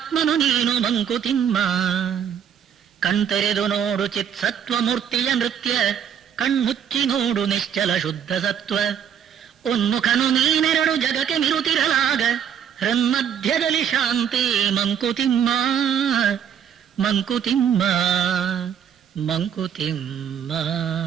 ನೀನು ಮಂಕುತಿಮ್ಮ. ಕಣ್ತೆರೆದು ನೋಡು ಚಿತ್ ಸತ್ವ ಮೂರ್ತಿಯ ನೃತ್ಯ ಕಣ್ಮುಚ್ಚಿ ನೋಡು ನಿಶ್ಚಲ ಶುದ್ಧ ಸತ್ವ. ಉನ್ಮುಖನು ನೀನೆರಡು ಜಗಕ್ಕೆ ಮಿರುತಿರಲಾಗ ಹೃನ್ಮಧ್ಯದಲ್ಲಿ ಶಾಂತಿ ಮಂಕುತಿಮ್ಮ.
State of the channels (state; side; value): quieter; left; 8.5 dB